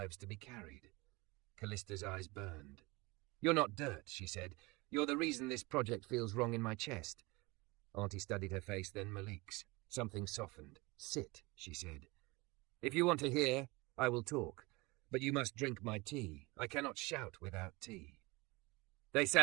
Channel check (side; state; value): left; quieter; 24.3 dB